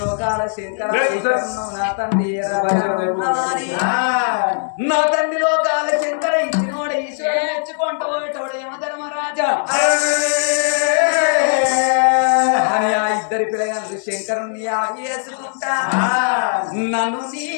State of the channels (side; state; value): right; silent; digital silence